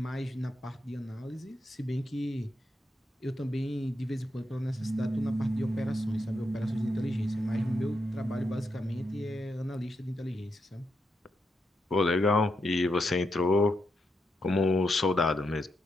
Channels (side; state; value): both; normal; correlation 0.83